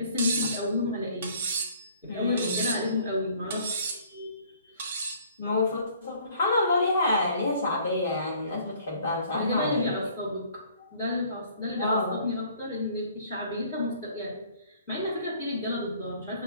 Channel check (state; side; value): inverted; both; correlation -0.56